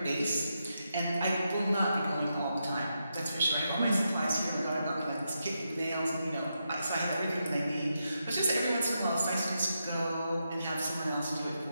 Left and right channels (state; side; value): inverted; both; correlation -0.85